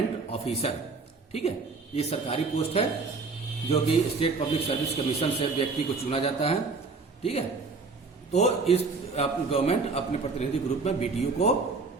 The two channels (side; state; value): left; quieter; 4.2 dB